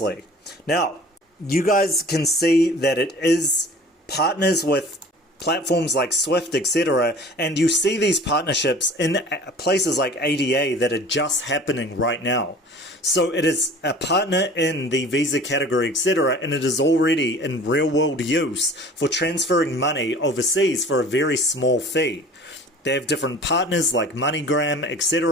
Now, you guys can see that it is partners with platforms like Swift, etc., and you see these partnerships in places like ADA that are just happening right now. So it is a partner in the Visa category, etc., and it is already in real-world use for transferring money overseas for a very small fee. They have different partners like MoneyGram,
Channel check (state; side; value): normal; both; correlation 0.45